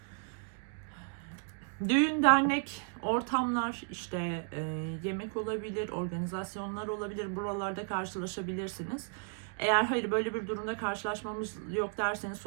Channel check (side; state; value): left; silent; 55 dB below the other